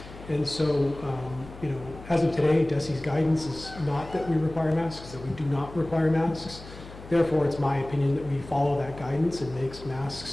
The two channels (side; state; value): left; noise; hum, 16 dB below the sound